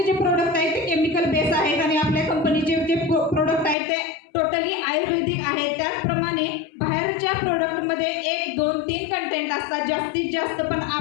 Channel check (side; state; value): right; drops out; at 3.8 s